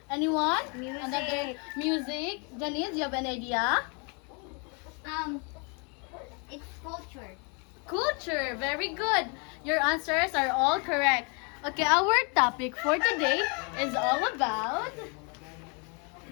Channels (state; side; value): quieter; right; 34.7 dB